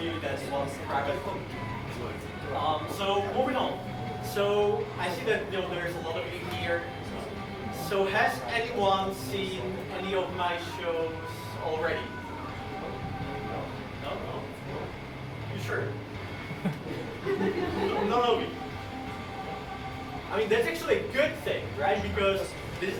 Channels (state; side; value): identical; both; correlation 1.00